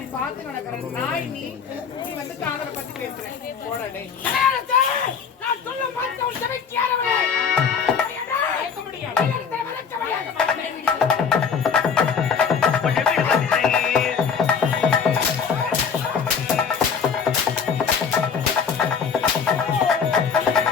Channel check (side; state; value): right; quieter; 6.3 dB